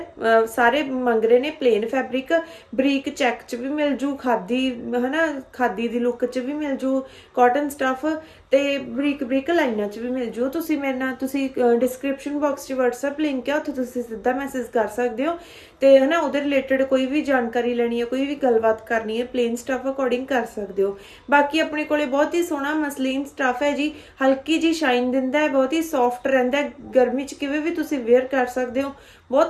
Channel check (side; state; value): both; identical; correlation 1.00